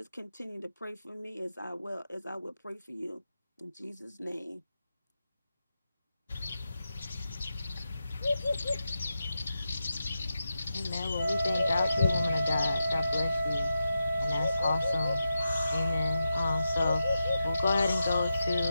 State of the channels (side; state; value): both; inverted; correlation -0.89